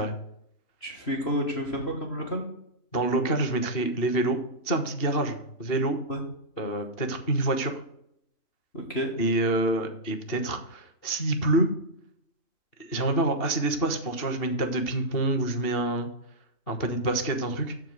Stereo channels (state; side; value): late; right; 2.8 ms